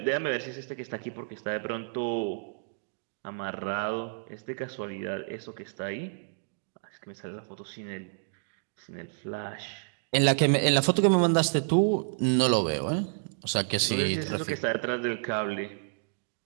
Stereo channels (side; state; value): left; silent; digital silence